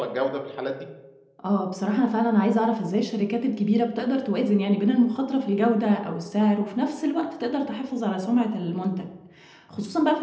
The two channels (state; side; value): identical; both; correlation 1.00